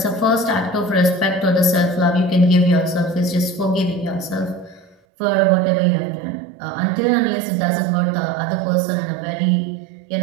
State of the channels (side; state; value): left; drops out; at 5.0 s